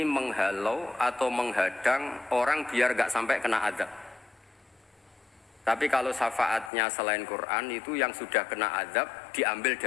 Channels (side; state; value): right; drops out; at 6.7 s